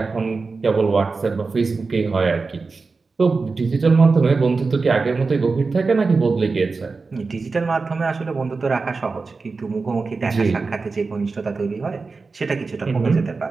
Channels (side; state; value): left; quieter; 4.2 dB